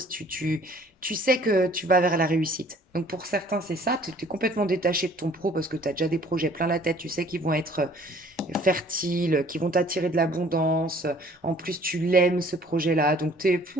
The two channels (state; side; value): normal; both; correlation 0.55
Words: tu sais que tu vas vers la réussite. Donc pour certains, c'est ça, tu es complètement détaché de ton pro parce que tu as déjà des projets plein la tête, tu sais qu'ils vont être fertiles, qu'ils vont t'attirer de l'abondance. En plus, tu l'aimes ce projet-là, donc t'es